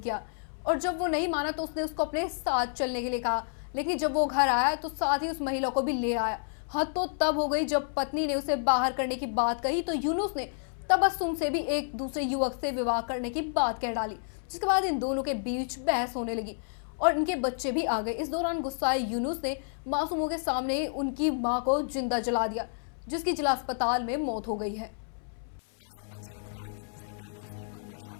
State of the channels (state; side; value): silent; right; 58 dB below the other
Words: किया और जब वो नहीं माना तो उसने उसको अपने साथ चलने के लिए कहा। लेकिन जब वो घर आया तो साथ ही उस महिला को भी ले आया। हद तो तब हो गई जब पत्नी ने उसे बाहर करने की बात कही तो यूनुस ने तबस्सुम से भी एक दूसरे युवक से विवाह करने की बात कह डाली, जिसके बाद इन दोनों के बीच बहस होने लगी और इनके बच्चे भी आ गए। इस दौरान गुस्साए यूनुस ने मासूमों के सामने उनकी मां को जिंदा जला दिया, जिसकी जिला अस्पताल में मौत हो गई है।